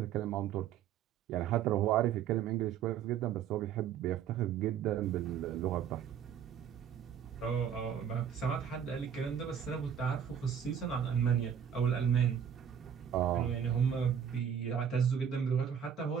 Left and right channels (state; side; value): quieter; left; 8.5 dB